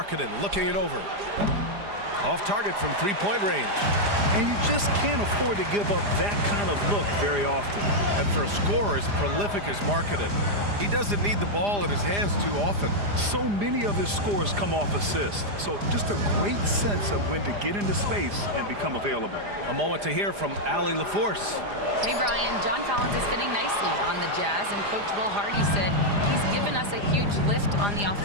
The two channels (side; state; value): left; late; 4.9 ms